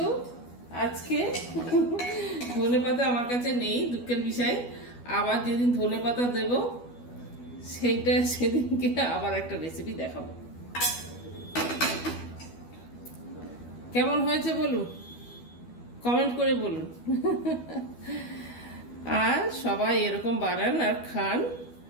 আজকে ধনেপাতা আমার কাছে নেই, দুঃখের বিষয়। আবার যেদিন ধনেপাতা দেব সেদিনকে আবার একটা রেসিপি দেখাবো। কেমন হয়েছে বলুন, কমেন্ট করে বলুন। আর সবাই এরকম বানান আর খান,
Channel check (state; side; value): late; right; 12 ms